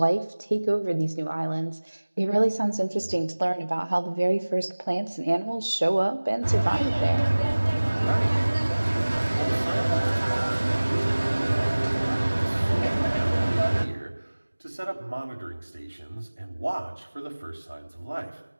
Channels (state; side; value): inverted; both; correlation -1.00